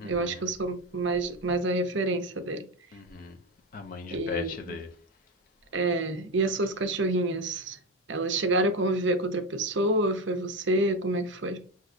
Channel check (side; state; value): both; normal; correlation 0.16